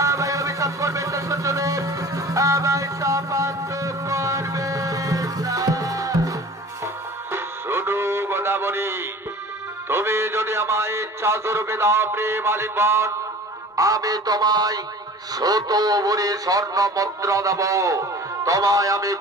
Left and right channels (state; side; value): normal; both; correlation 0.42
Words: আমায় অভিশাপ করবেন না। সূর্যদেব আমায় শাপান্ত করবেন না। শুধু গোদাবরী, তুমি যদি আমায় ইচ্ছা স্বরূপে দাও প্রেম আলিঙ্গন, আমি তোমায় 100 ভরি স্বর্ণ মুদ্রা দেব। তোমায় আমি